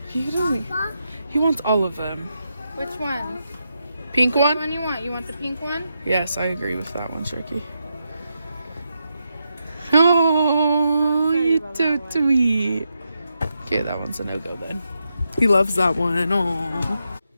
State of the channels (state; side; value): inverted; both; correlation -0.85